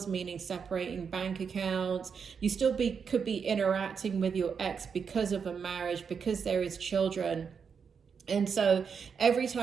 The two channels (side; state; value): left; quieter; 6.3 dB